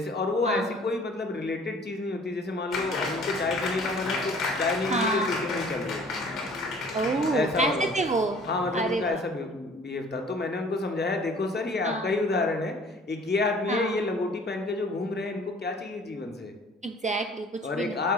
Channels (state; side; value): normal; both; correlation 0.51